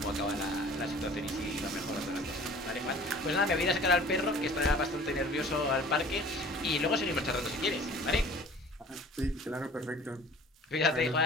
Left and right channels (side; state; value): both; normal; correlation 0.47